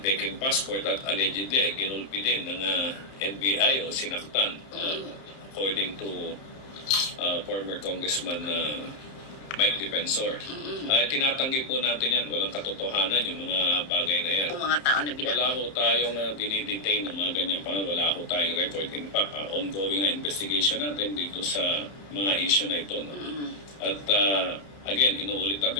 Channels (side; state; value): right; late; 31 ms